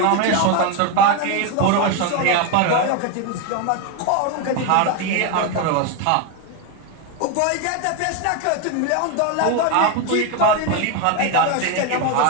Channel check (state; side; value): different; both; correlation 0.02